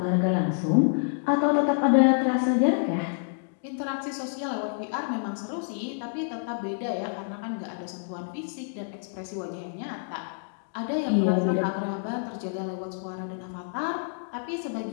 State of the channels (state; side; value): silent; right; digital silence